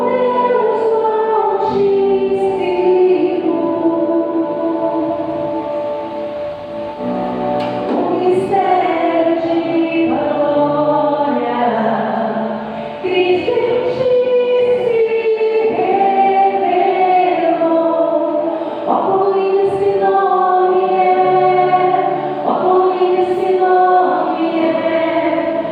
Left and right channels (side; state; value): both; identical; correlation 1.00